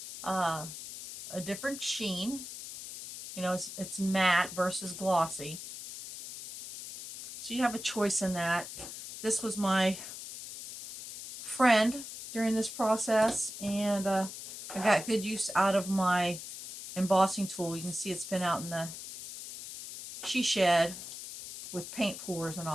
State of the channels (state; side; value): noise; left; hiss, 10 dB below the sound